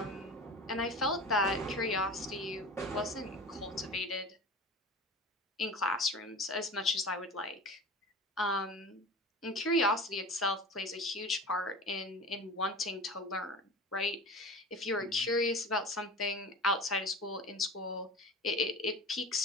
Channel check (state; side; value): normal; both; correlation 0.35